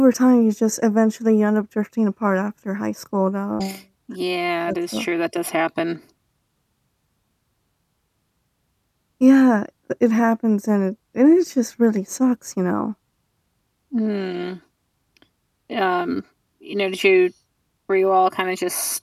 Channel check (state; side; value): identical; both; correlation 1.00